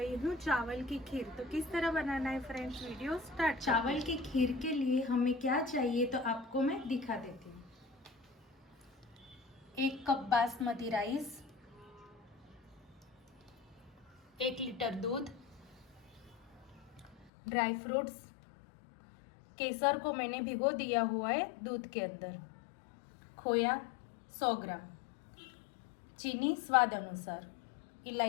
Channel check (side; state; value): right; drops out; at 17.3 s